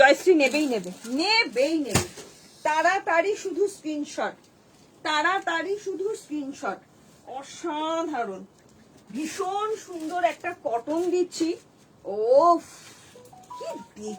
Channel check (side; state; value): both; identical; correlation 1.00